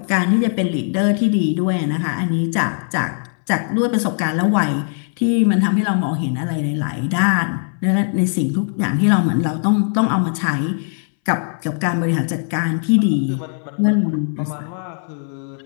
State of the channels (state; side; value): silent; right; 63 dB below the other